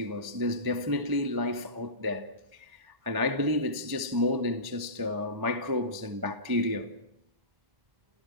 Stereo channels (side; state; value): left; late; 1.1 ms